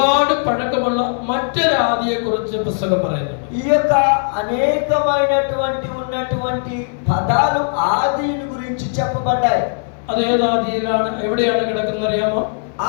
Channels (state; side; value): silent; right; digital silence